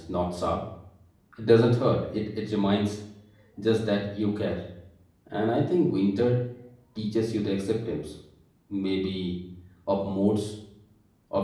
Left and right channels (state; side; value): identical; both; correlation 1.00